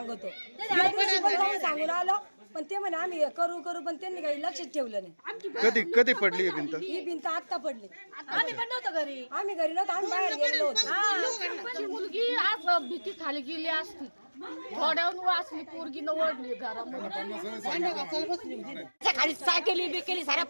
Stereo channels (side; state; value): both; inverted; correlation -1.00